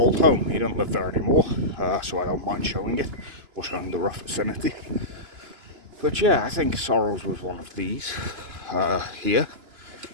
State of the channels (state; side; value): late; left; 2.9 ms